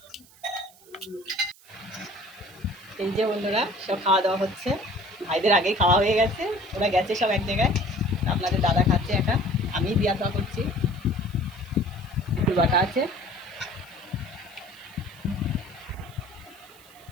এই যে বন্ধুরা সব খাওয়া দাওয়া হচ্ছে। ভাইদের আগেই খাওয়া হয়ে গেছে, ওরা গেছে সব এক জায়গায়। আপনাদের দাদা খাচ্ছে একা, আমি দিয়া খাওয়া করছি। একটু বাটা আছে।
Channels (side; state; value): right; noise; hiss, 25 dB below the sound